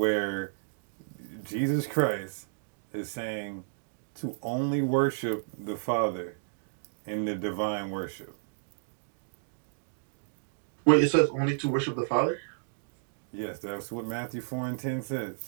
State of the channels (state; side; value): silent; left; digital silence